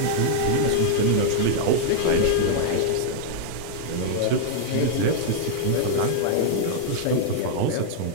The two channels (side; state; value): both; different; correlation -0.01